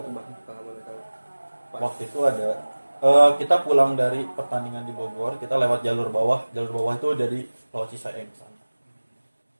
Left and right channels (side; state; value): both; inverted; correlation -1.00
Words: tuh bang? Kalau boleh tahu. Pas. Waktu itu ada kita pulang dari pertandingan di Bogor, kita lewat jalur bawah itu dari Pulau Cisaeng sana.